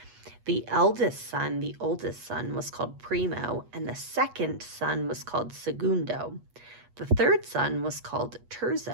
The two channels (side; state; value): left; late; 8.3 ms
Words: The eldest son, the oldest son, was called Primo, and the second son was called Segundo. The third son was called